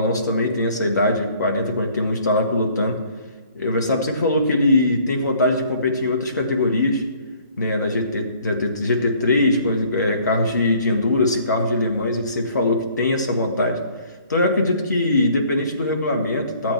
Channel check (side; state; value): both; inverted; correlation -0.58